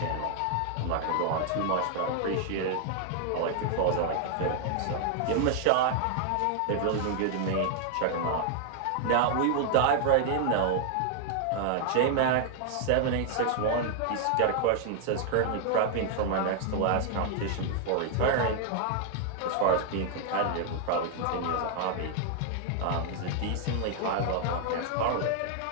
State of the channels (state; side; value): different; both; correlation 0.00